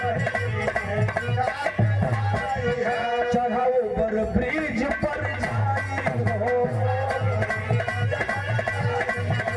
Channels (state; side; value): identical; both; correlation 1.00